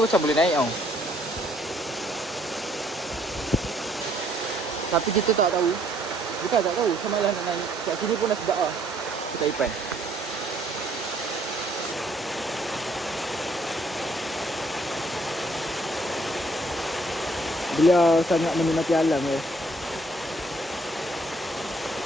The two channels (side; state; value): both; normal; correlation 0.65